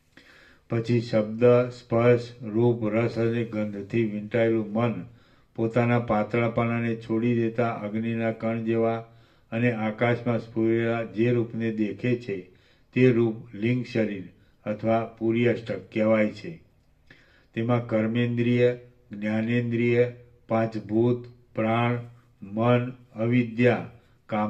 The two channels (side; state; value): both; identical; correlation 1.00